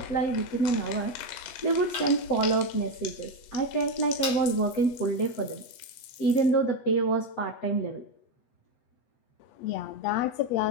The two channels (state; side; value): late; right; 8.2 ms